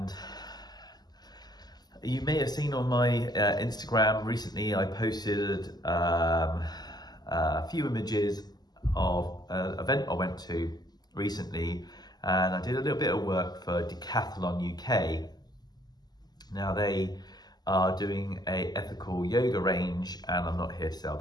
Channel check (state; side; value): late; right; 0.20 ms